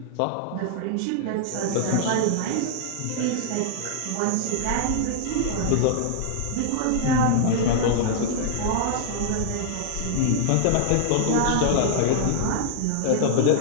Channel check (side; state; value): both; different; correlation -0.01